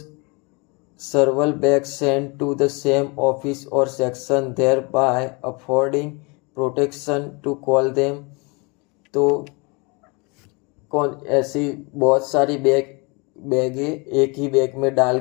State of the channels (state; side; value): quieter; right; 29.4 dB